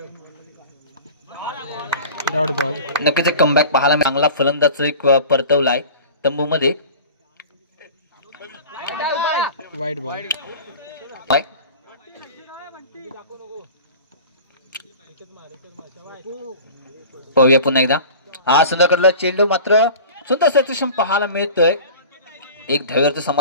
Dot ball. नक्कीच एक कमबॅक पाहायला चांगला फलंदाज एक परतवलाय तंबू मध्ये. वाईट बॉल. पाहूया पुन्हा एकदा. हा सुंदर चेंडू मात्र सुंदर सेक्शन पाहायला मिळतोय. एक धावेवरचं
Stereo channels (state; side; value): inverted; both; correlation -0.39